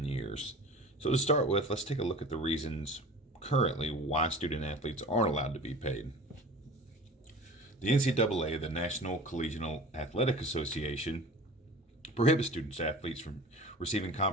years. So, to start with, let's take a look at the reasons currently why student athletes aren't allowed to be paid. The NCAA, the National Collegiate Athletic Association, prohibits student athletes from receiving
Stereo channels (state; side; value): normal; both; correlation 0.40